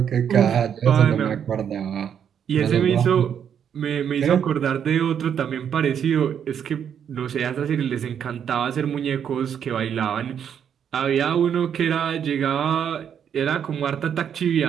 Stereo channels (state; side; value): quieter; left; 8.4 dB